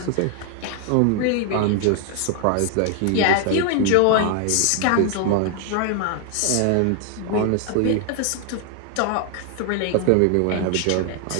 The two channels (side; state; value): both; different; correlation 0.00